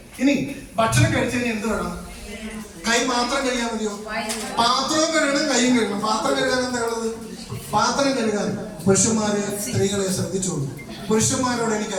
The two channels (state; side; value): identical; both; correlation 1.00